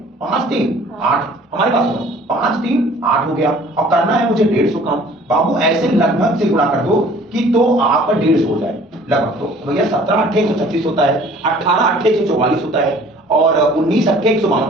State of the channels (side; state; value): both; normal; correlation 0.52